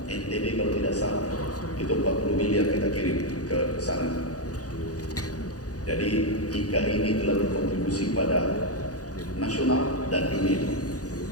NTB kalau tidak salah, itu 40 miliar kita kirim ke sana. Jadi IKA ini telah berkontribusi pada nasional dan dunia.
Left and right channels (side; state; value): right; late; 0.67 ms